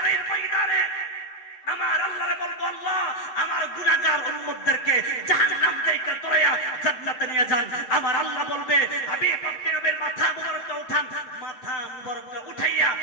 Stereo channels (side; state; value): right; late; 7.8 ms